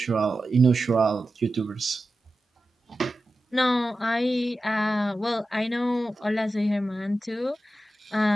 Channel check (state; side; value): normal; both; correlation 0.93